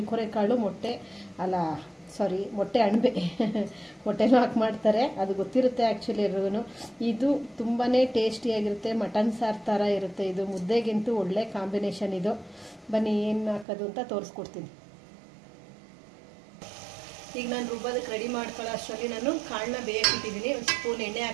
ಮೊಟ್ಟೆ ಮೊಟ್ಟೆ ಅಣಬೆ ಮೊಟ್ಟೆನೂ ಹಾಕಿ ಮಾಡ್ತಾರೆ, ಅದು ಗೊತ್ತಿರುತ್ತೆ ಆ್ಯಕ್ಚುಲಿ ಎಲ್ರಿಗೂ. ಇದು ತುಂಬಾ ಟೇಸ್ಟಿಯಾಗಿರುತ್ತೆ, ಮಟನ್ ಸಾರು ಥರ ಇರುತ್ತೆ. ಇದು ಮುದ್ದೆಗಿಂತೂ ಒಳ್ಳೆ ಕಾಂಬಿನೇಷನ್. ಇದು ಬನ್ನಿ ಏನು ಹಾಕೋದು ಅಂತ ತೋರಿಸ್ಕೊಡ್ತೀನಿ. ಈಗ ನಾನು ರುಬ್ಬೋದಕ್ಕೆ ರೆಡಿ ಮಾಡ್ಕೊಳ್ಳೋ ಅಷ್ಟರಲ್ಲಿ ನಾನು ಕಾಳನ್ನ ಬೇಯಕ್ಕಿಟ್ಟಿದ್ದೀನಿ. ಒಂದು ಸ್ಪೂನ್ ಎಣ್ಣೆ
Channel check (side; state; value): left; drops out; at 13.7 s